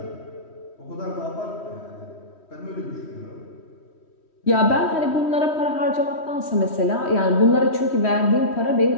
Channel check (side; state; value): right; late; 3.1 ms